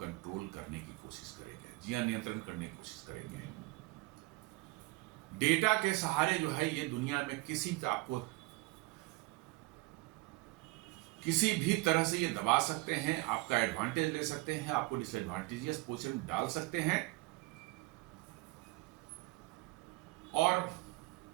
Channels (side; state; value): left; quieter; 21.7 dB